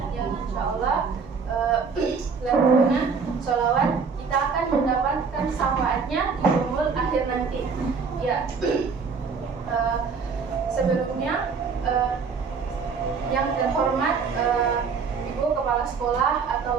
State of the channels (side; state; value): left; quieter; 5.4 dB